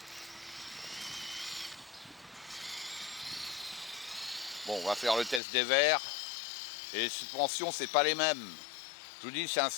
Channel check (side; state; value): right; drops out; at 5.4 s